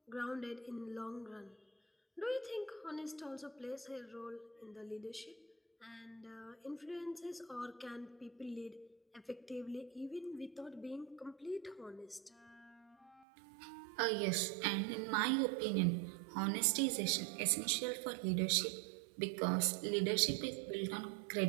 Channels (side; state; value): left; drops out; at 13.2 s